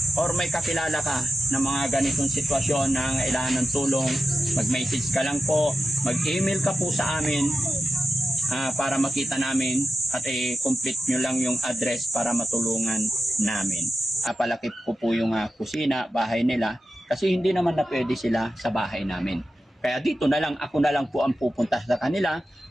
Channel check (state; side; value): normal; both; correlation 0.92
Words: or may kakilala ka ng mga ganitong sitwasyon na kailangan ng tulong, mag-message ka lang po, mag-email ka po sa amin para makita namin at complete nyo lang yung address para matulungan namin. Palaki po yung kusina, bahay nila, kasi hindi naman na pwede sila sa bahay namin. Kaya dito na lang, ako na lang po ang pupunta sa kanila